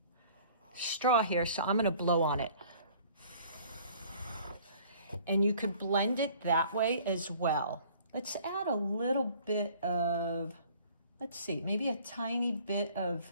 straw here, so I'm gonna blow on it. And you could blend it that way as well. Let's add a little bit of, let's see, maybe a tiny bit of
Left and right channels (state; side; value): inverted; both; correlation -0.53